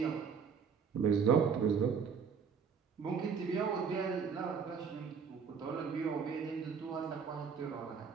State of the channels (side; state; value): left; quieter; 6.3 dB